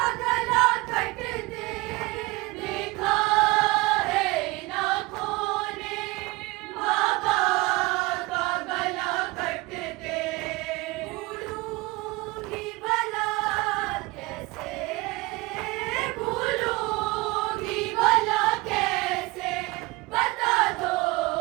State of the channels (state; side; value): quieter; left; 22.8 dB